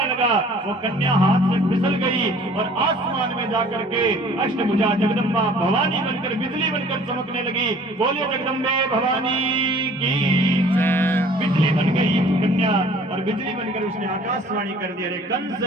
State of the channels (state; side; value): normal; both; correlation 0.52